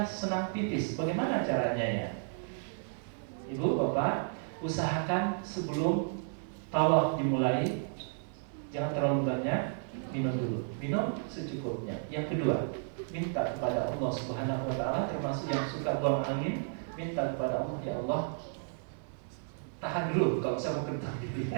senang pipis, bagaimana caranya ya? Ibu bapak, usahakan sebelum tawaf dimulai, jangan terlalu banyak, minum dulu. Minum secukupnya. Yang kedua, minta kepada Allah Subhanahu wa taala, termasuk yang suka buang angin, minta kepada Allah, ya Allah, tahan dulu kalau saya mau kentang gitu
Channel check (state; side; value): silent; left; 56 dB below the other